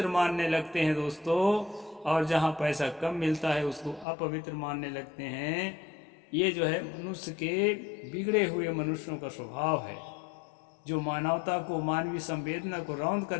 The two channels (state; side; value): drops out; right; at 4.0 s